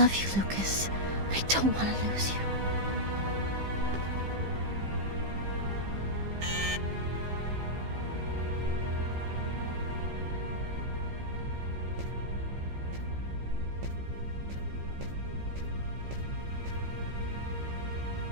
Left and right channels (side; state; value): left; late; 15 ms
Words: you, Lucas. I don't want to lose you.